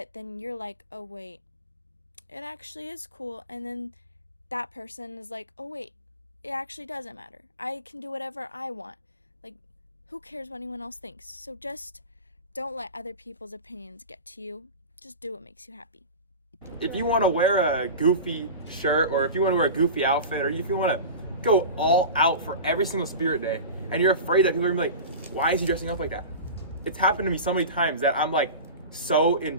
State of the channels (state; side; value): inverted; both; correlation -0.30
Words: then you're like, oh wait, it actually is cool. And then that person is like, oh wait, it actually doesn't matter, I can do whatever I want. Like, who cares what anyone else thinks? So just don't let other people's opinions get to you. Just do what makes you happy. If you want to wear a goofy shirt, or if you want to wear a goofy outfit, or if you want to go all out for every single spirit day, and you're afraid that people are going to be like, why is he dressing up like that? It's happened to me so many times that I'm like so